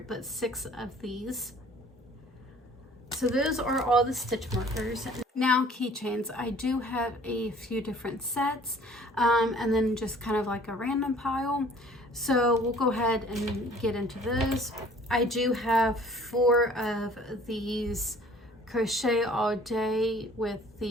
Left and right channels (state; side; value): normal; both; correlation 0.52